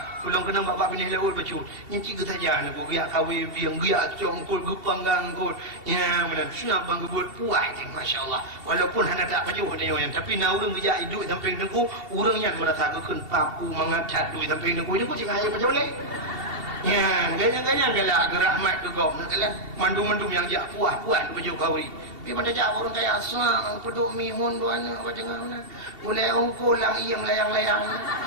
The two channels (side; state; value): left; late; 2.7 ms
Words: Pulang kena bapa bini laul bacu. Nyenci ke saja nak biak kawi biang biak congkul gupanggang kul. Ya mana sunat bang gebut puat masya-Allah. Walaupun hana tak baju dia yang tapi na urang gejak hidup samping dengku urang yang merasa keun papu mangat duit samping dengku dia pun cakap ayo baca boleh. Ya, ganyan-ganyan galak gerahmat ke gom nak kalah. Mandum-mandum yang jak puas-puas baju kawi. Pi pada jak orang kaya asal peduk mihun duana apa jangan mana. Mulai ungkul lang iem layang-layang.